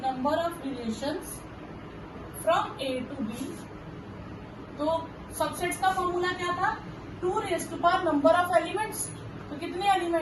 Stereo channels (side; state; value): both; identical; correlation 1.00